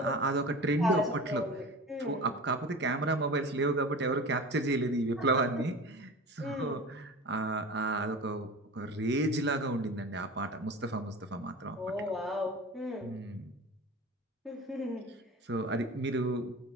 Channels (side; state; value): both; normal; correlation 0.34